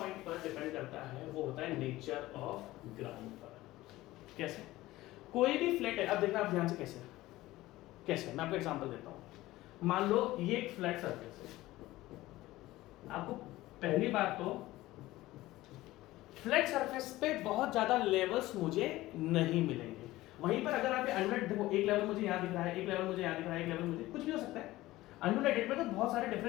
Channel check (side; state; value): right; quieter; 17.4 dB